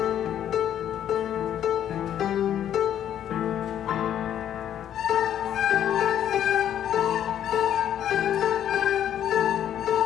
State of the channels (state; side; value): quieter; right; 10.4 dB